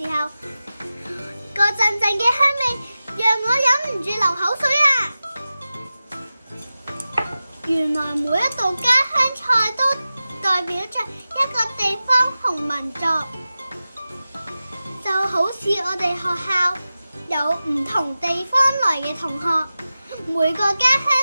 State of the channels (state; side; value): inverted; both; correlation -0.95